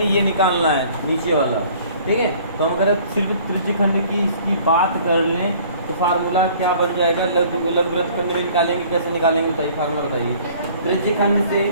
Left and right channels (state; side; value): inverted; both; correlation -0.53